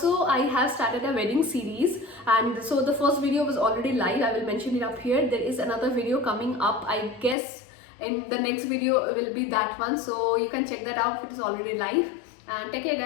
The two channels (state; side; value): drops out; right; at 7.4 s